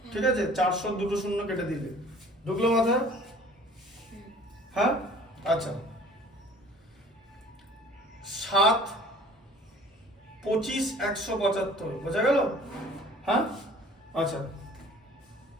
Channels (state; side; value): normal; both; correlation 0.49